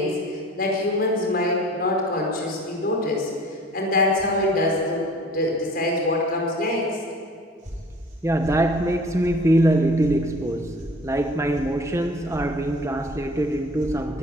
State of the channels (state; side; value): normal; both; correlation 0.47